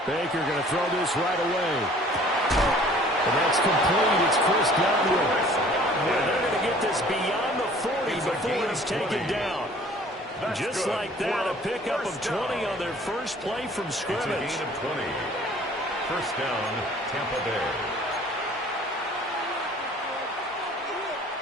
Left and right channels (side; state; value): both; normal; correlation 0.52